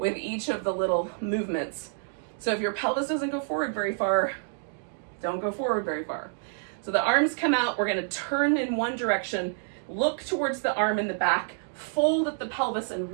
each of the little movements. So if your pelvis doesn't go forward very far, don't go forward very far. So the arms come out, we're gonna turn in one direction, look towards the arm in the back, fold at the pelvis and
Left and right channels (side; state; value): left; silent; digital silence